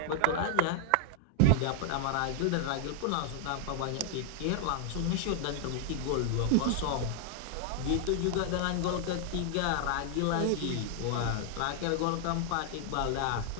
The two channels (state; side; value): different; both; correlation 0.00